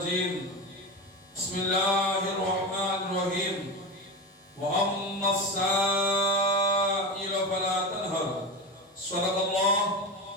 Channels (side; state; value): both; normal; correlation 0.21